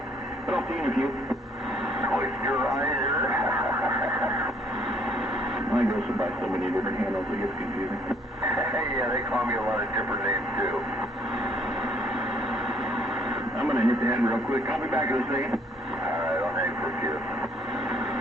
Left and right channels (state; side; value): normal; both; correlation 0.63